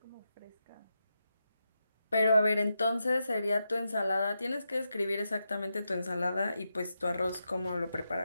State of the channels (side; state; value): both; inverted; correlation -0.86